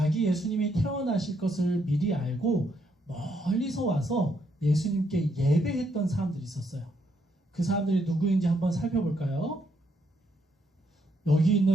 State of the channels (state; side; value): normal; both; correlation 0.75